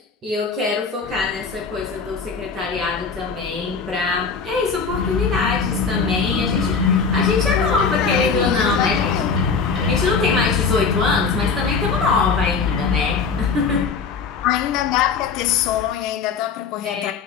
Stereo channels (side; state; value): right; quieter; 5.3 dB